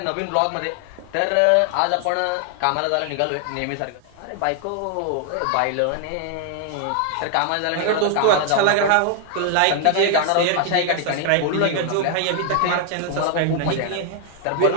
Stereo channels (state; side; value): different; both; correlation 0.00